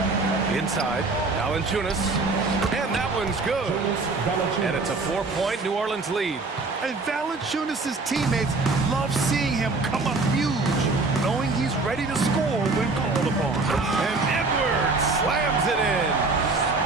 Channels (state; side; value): quieter; left; 3.6 dB